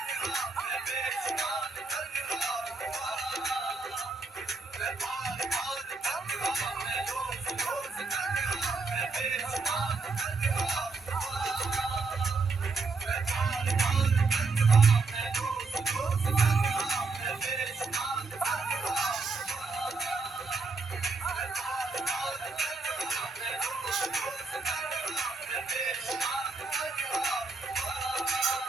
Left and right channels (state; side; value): quieter; left; 4.0 dB